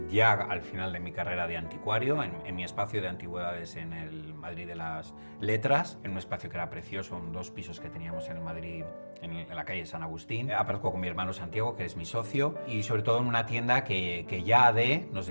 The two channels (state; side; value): inverted; both; correlation -1.00